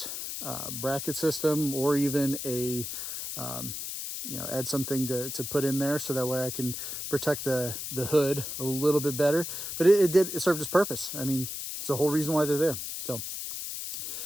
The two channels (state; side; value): noise; left; hiss, 6 dB below the sound